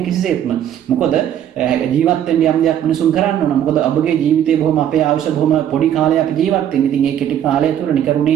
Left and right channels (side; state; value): left; quieter; 10.3 dB